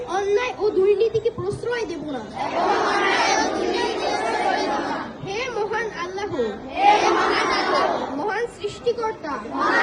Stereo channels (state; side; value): identical; both; correlation 1.00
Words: অন্যায় ও দুর্নীতিকে প্রশ্রয় দেব না। হে মহান আল্লাহ, মহান সৃষ্টিকর্তা,